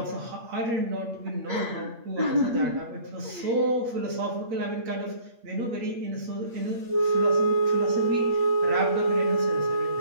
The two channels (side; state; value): left; late; 8.5 ms